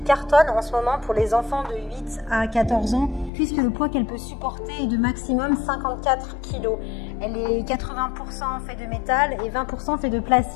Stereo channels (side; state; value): right; drops out; at 3.3 s